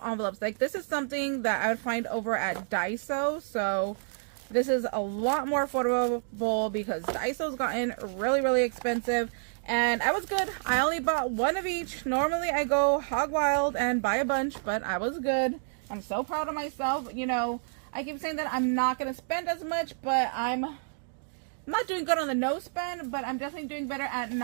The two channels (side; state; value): left; silent; digital silence